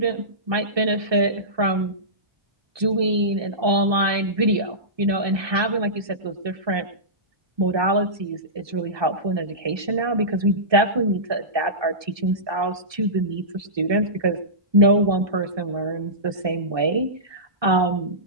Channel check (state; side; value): late; left; 1.2 ms